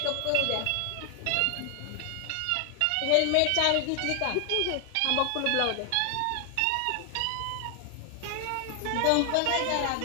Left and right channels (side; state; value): both; different; correlation 0.00